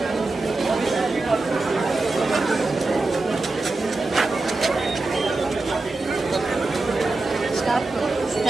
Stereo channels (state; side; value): quieter; left; 3.3 dB